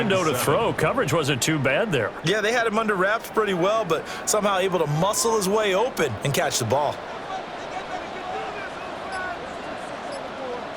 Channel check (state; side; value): identical; both; correlation 1.00